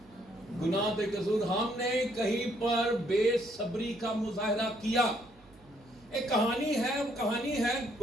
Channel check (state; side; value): noise; right; hum, 28 dB below the sound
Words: گناہ تے قصور. ہم نے کہیں پر بے صبری کا مظاہرہ کیا. ایک کہانی ہے, وہ کہانی ہے